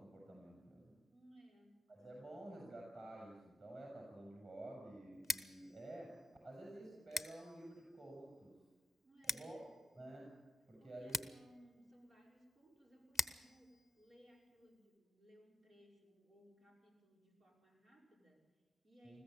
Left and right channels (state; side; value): normal; both; correlation 0.83